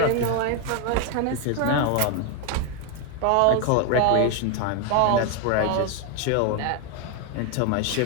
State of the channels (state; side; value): different; both; correlation 0.01